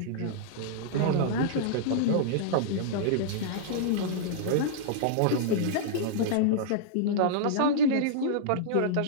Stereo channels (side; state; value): both; different; correlation -0.02